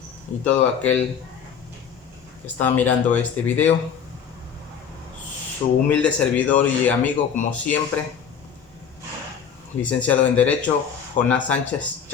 y todo aquel que está mirando este video. Su humilde servidor y amigo, como siempre, licenciado en Derecho, Jonás Sánchez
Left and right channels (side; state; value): right; quieter; 7.4 dB